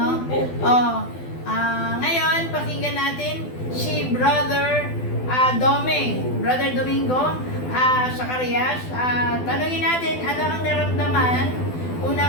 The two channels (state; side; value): late; right; 12 ms